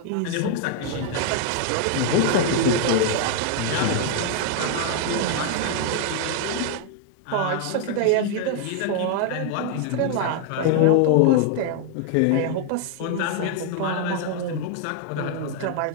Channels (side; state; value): both; different; correlation 0.00